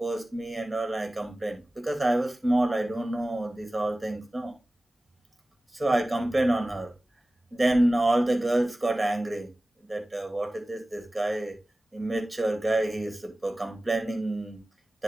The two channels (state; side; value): normal; both; correlation 0.97